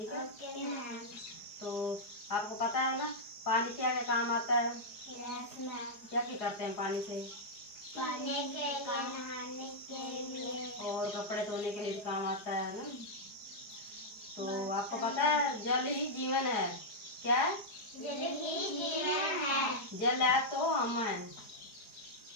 है? Okay ma'am. तो आपको पता है ना पानी क्या क्या काम आता है? Yes ma'am. क्या क्या करते हैं पानी से? पीने के लिए, नहाने के लिए और कपड़े धोने के लिए भी काम आता है ना। तो आपको पता है जल ही जीवन है। क्या है? जल ही जीवन है। जल है तो हम हैं,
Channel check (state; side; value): late; right; 4.9 ms